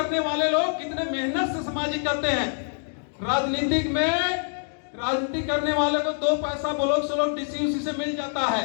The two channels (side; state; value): right; silent; digital silence